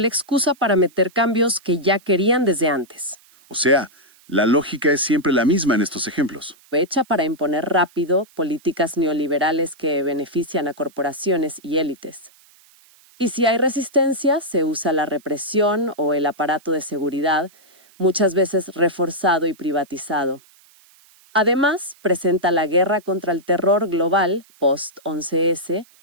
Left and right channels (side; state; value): right; noise; hiss, 29 dB below the sound